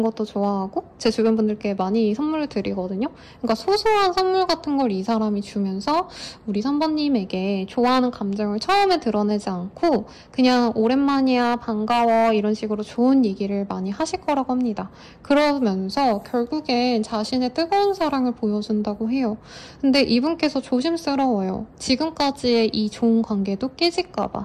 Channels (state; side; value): identical; both; correlation 1.00